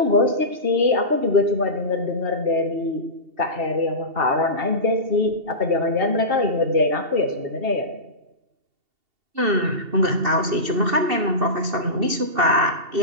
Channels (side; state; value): left; late; 2.7 ms